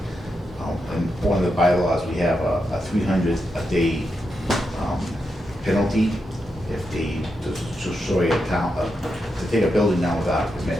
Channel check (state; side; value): normal; both; correlation 0.85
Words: in one of the bylaws, we have a 300 a day penalty if they destroy a town, to take a building down without a